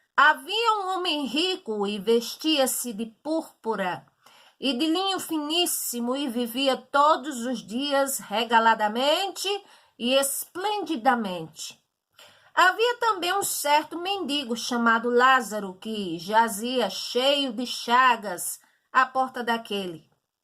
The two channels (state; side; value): identical; both; correlation 1.00